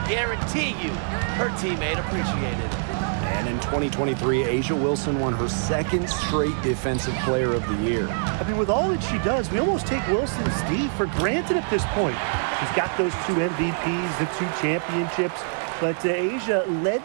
guarantee you her teammate appreciated it. And in 2023, Asia Wilson won her second straight Defensive Player of the Year. I mean, with all that she does, we almost take Wilson's D for granted at this point. She's got those 2 MVPs, the 2 championships, but Asia led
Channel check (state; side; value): silent; left; 62 dB below the other